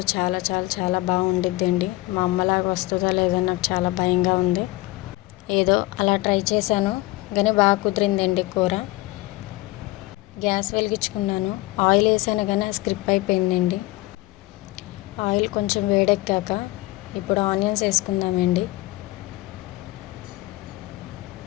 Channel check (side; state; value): right; quieter; 19.4 dB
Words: చాలా చాలా చాలా బాగా వండిద్దండి. మా అమ్మలాగా వస్తుందో లేదో నాకు చాలా భయంగా ఉంది. ఏదో అలా ట్రై చేశాను, కానీ బాగా కుదిరిందండి కూర. గ్యాస్ వెలిగించుకున్నాను, ఆయిల్ వేసాను కానీ స్క్రిప్ అయిపోయిందండి. ఆయిల్ కొంచెం వేడెక్కాక ఇప్పుడు ఆనియన్స్ వేసుకుందామండి.